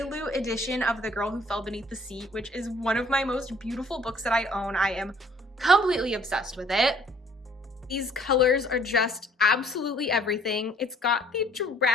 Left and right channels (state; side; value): normal; both; correlation 0.58